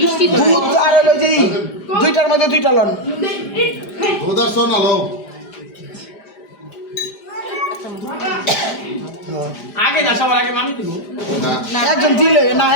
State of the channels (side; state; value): right; late; 5.0 ms